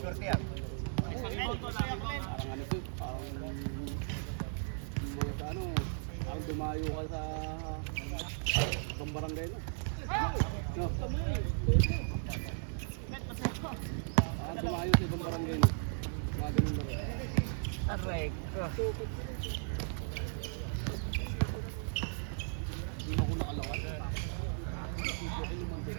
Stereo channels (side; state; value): left; silent; digital silence